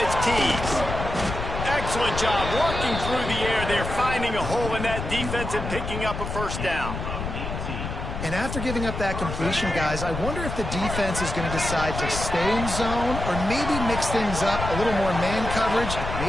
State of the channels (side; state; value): left; noise; rumble, 5 dB below the sound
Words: it's Tees. Excellent job working through the air. They're finding a hole in that defense and picking up a first down. And after giving up that completion, guys, I wonder if the defense is going to decide to stay in zone or maybe mix things up, a little more man coverage,